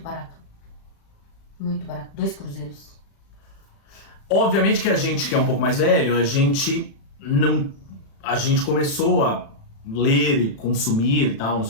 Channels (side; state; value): right; late; 36 ms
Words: barato. Muito barato. 2 cruzeiros. Obviamente que a gente que é um pouco mais velho, a gente começou a ler e consumir e tal, não